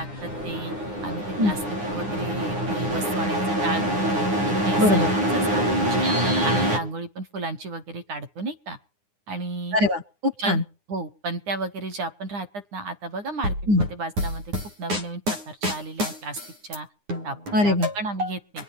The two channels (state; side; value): late; left; 9.8 ms